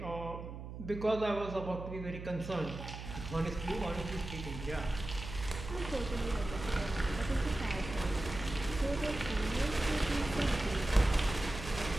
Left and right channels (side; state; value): right; noise; hum, 9 dB below the sound